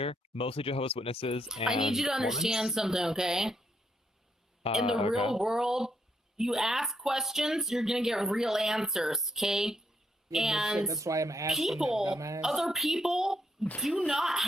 Mostly Jehovah's Witnesses. And I need you to understand something, okay? In the real world, you ask questions, you're gonna get real answers, okay? Yeah, and that's why I'm asking people, other people, do not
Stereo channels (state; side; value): normal; both; correlation 0.76